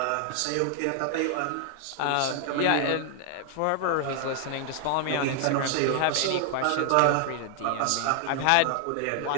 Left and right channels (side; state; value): both; different; correlation 0.00